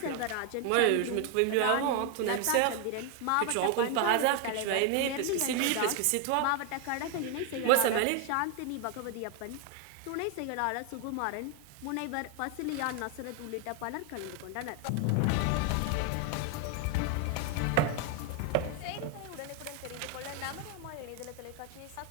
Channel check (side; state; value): both; different; correlation 0.01